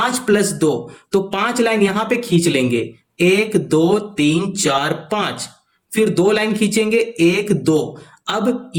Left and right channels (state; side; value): identical; both; correlation 1.00